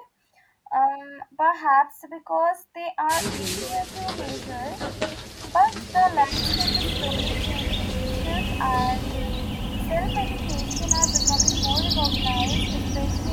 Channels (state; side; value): identical; both; correlation 1.00